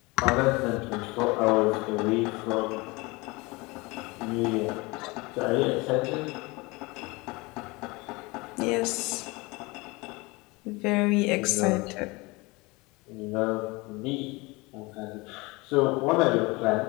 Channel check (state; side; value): quieter; right; 24.5 dB